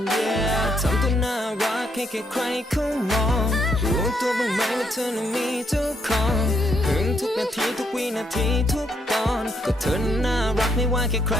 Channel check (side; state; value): both; normal; correlation 0.74